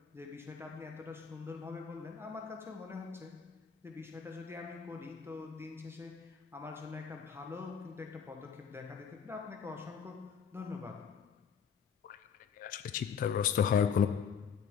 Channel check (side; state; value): right; quieter; 7.0 dB